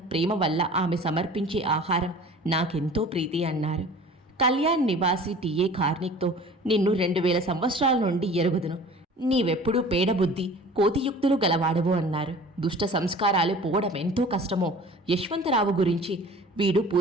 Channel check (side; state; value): both; normal; correlation 0.44